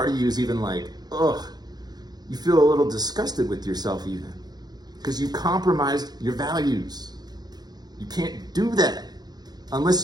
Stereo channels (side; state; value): left; late; 0.19 ms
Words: of you is even like, ugh, you feel a little disgusted with yourself even, because you compromised your values. You can't do that. Unless